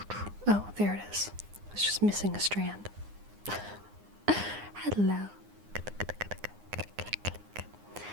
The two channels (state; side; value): late; left; 9.8 ms